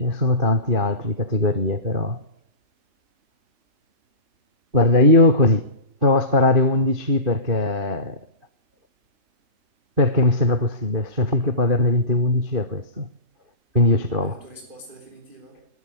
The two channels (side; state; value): left; late; 2.5 ms